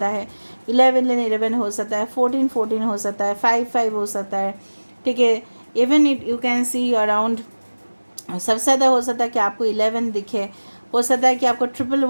है, 11 हो सकता है, 14 हो सकता है, 5 हो सकता है, ठीक है। Even it you can see around सबसे ज़्यादा हो सकता है कि आपको 11 दिखे, हो सकता है कि आपको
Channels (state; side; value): inverted; both; correlation -1.00